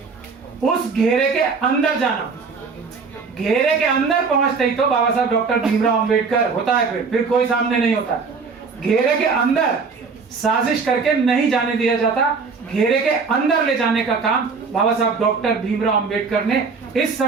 उस घेरे के अंदर जाना। घेरे के अंदर पहुंचते ही तो बाबा साहब डॉक्टर भीमराव अंबेडकर होता है, फिर कोई सामने नहीं होता। घेरे के अंदर साजिश करके नहीं जाने दिया जाता, घेरे के अंदर ले जाने का काम बाबा साहब डॉक्टर भीमराव अंबेडकर ने इस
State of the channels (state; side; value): quieter; left; 4.9 dB